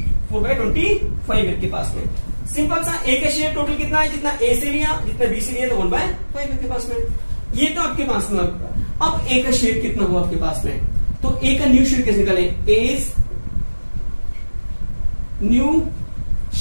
4/25 के पास में। सिंपल सा, ए का शेयर टोटल कितना है, जितना ए से लिया जितना बी से लिया, तो 1/5 के पास में। ये तो आपके पास में। अब ए का शेयर कितना हुआ आपके पास में, तो ए का न्यू शेयर कैसे निकाले, एज न्यू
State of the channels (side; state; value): both; inverted; correlation -1.00